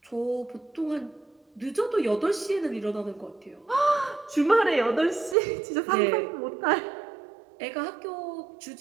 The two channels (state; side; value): drops out; left; at 5.4 s